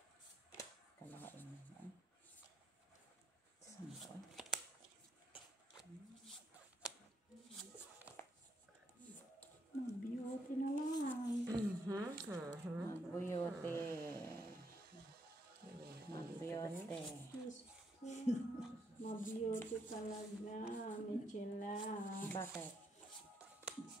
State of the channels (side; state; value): both; normal; correlation 0.76